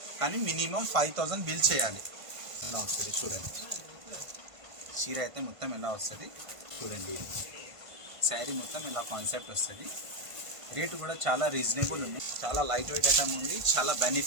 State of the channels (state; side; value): late; left; 1.5 ms